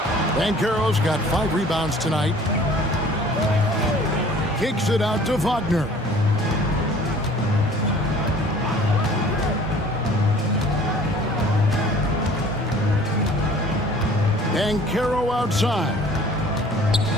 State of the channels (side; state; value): both; normal; correlation 0.51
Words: Banchero's got 5 rebounds tonight. Kicks it out to Wagner. Banchero outside.